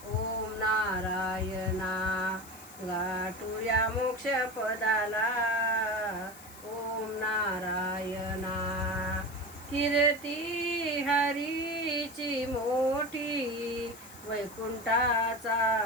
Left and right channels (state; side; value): noise; left; hiss, 19 dB below the sound